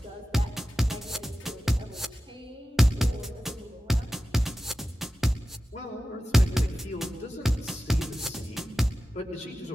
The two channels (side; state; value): both; normal; correlation 0.94